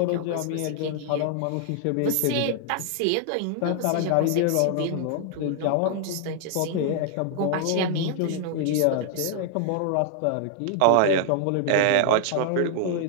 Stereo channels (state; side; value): different; both; correlation 0.00